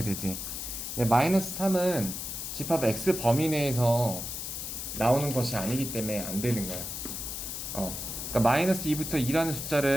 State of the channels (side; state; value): left; noise; hiss, 6 dB below the sound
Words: 되지. 근데 마이너스 3은 집합 x 범위 내에서 나오는 것이 아니기 때문에 안 되는 거야. 그러니까 마이너스 2부터 2라는